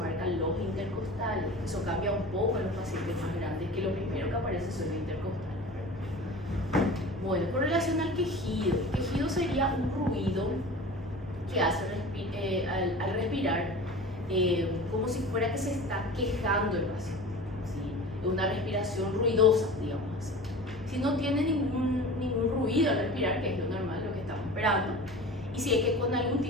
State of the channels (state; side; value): normal; both; correlation 0.37